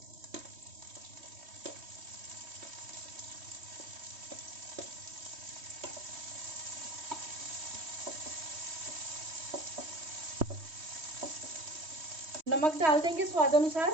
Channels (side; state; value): left; late; 3.1 ms